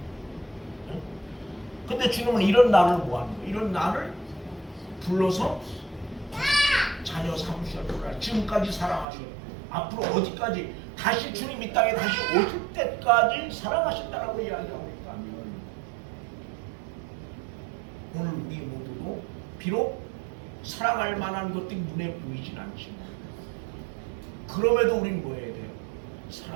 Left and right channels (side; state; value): left; drops out; at 9.1 s